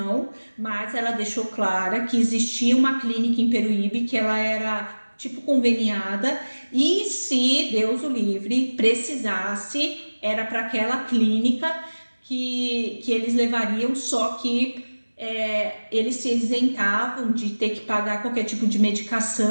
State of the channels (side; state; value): both; inverted; correlation -1.00